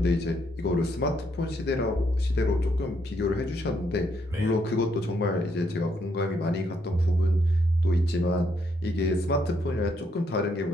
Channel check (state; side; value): normal; both; correlation 0.74